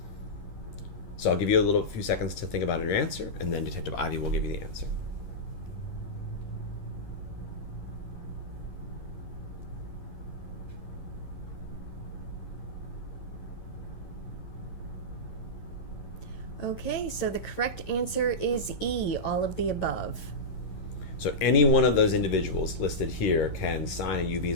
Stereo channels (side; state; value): right; late; 11 ms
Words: So I'll give you a few seconds to think about your answer, and then Detective Ivy will give you the answer. Okay, so the correct answer is E, all of the above. So any one of those individuals listed here can sign a U